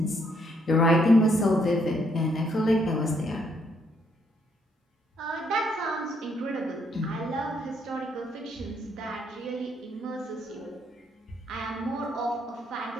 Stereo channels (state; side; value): normal; both; correlation 0.72